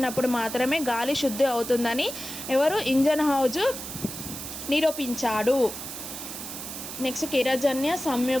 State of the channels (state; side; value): noise; right; hiss, 8 dB below the sound